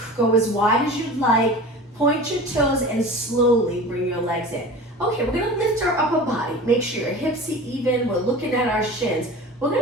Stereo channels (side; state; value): both; normal; correlation 0.36